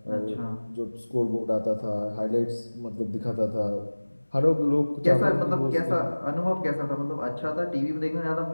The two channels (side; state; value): both; inverted; correlation -1.00